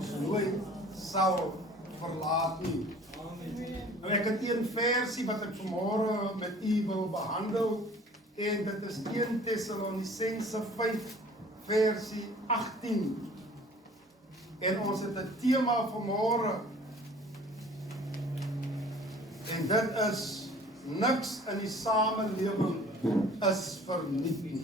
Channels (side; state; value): both; normal; correlation 0.50